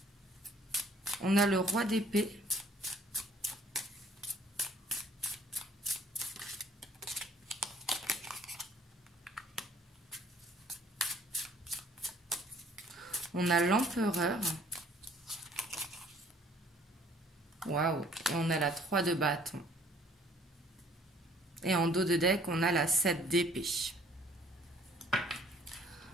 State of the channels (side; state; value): both; normal; correlation 0.58